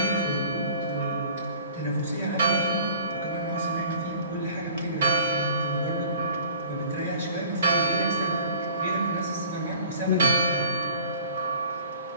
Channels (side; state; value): both; inverted; correlation -0.49